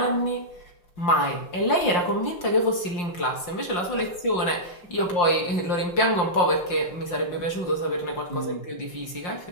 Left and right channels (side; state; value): right; late; 5.7 ms